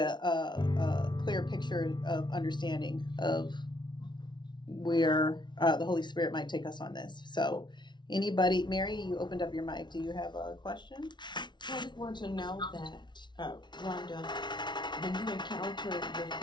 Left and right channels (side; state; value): right; late; 0.22 ms